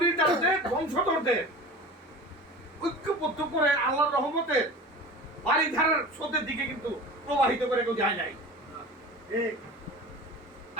বংশধরদের ঐক্যবদ্ধ করে আল্লাহর রহমতের বাড়ি ধারার স্রোতের দিকে কিন্তু প্রবাহিত করে কেউ যায় নাই।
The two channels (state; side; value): normal; both; correlation 0.36